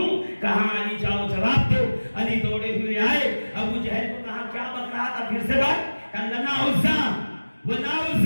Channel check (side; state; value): both; inverted; correlation -1.00